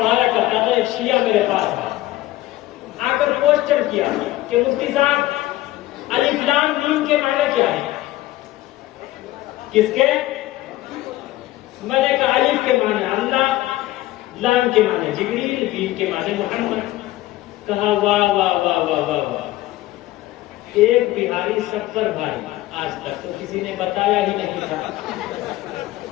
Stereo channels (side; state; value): right; quieter; 16.5 dB